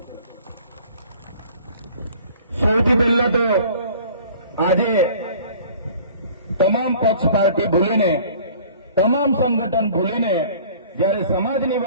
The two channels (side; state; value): both; inverted; correlation -0.49